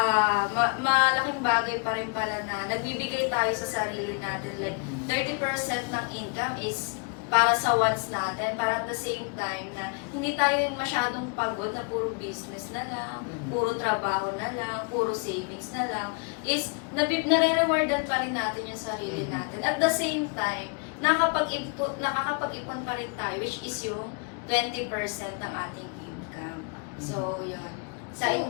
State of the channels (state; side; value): quieter; right; 35.3 dB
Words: malaking bagay pa rin pala na nagbibigay tayo sa sarili natin. Like, 30% ng income is para sa wants natin, para at the same time na hindi tayo yung masyadong pagod na puro business na lang, puro trabaho na lang, puro savings na lang, is nare-rewardan pa rin natin yung sarili natin. At the same time, nakakapag-ipon pa rin tayo, which is yung 20% ng ating income. So, yun. Sa